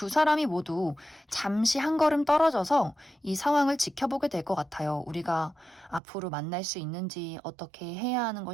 사람이 모두 잠시 한 걸음 떨어져서 이 상황을 지켜보게 될 것 같아요. 우리가 앞으로 만날 수 있는지, 어떻게 해야 하는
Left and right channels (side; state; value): left; drops out; at 6.0 s